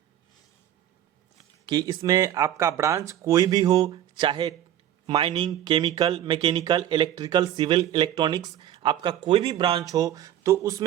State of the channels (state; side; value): quieter; left; 11.4 dB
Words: इसमें आपका ब्रांच कोई भी हो, चाहे mining, chemical, mechanical, electrical, civil, electronics, आपका कोई भी ब्रांच हो तो